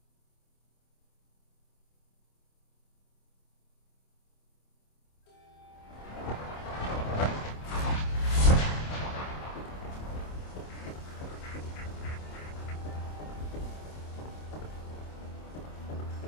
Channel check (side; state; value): right; late; 26 ms